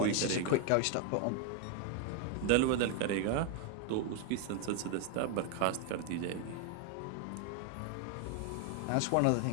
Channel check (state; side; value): different; both; correlation 0.00